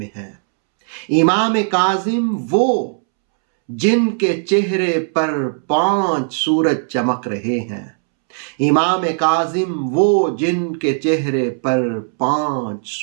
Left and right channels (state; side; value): silent; left; 67 dB below the other